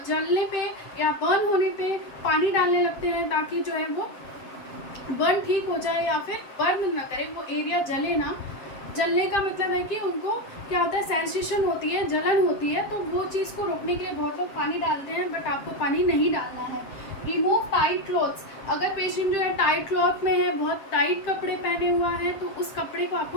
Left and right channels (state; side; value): late; right; 7.6 ms